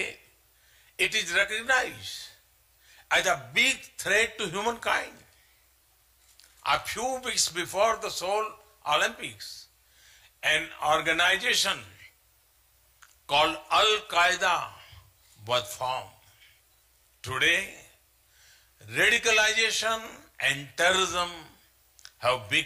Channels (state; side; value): identical; both; correlation 1.00